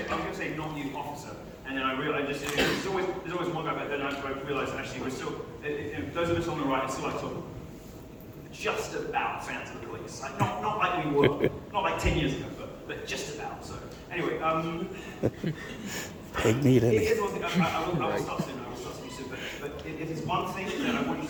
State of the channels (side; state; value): both; identical; correlation 1.00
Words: say not you, officer, and then I realized there's always one guy, but then I realized actually we're still, those of us on the right are still like sort of just about fans of the police. Like, not like we were, not like 10 years ago, but just about. So anyway, Take me to here's one thing. I will stop soon. But if it's one thing that I want you